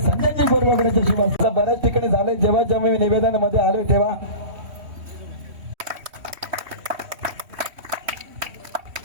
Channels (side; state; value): left; late; 3.1 ms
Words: संजयजी गोरवागड्याच्या शिवासे बऱ्याच ठिकाणी झाले जेव्हा मी निवेदनामध्ये आलोय तेव्हा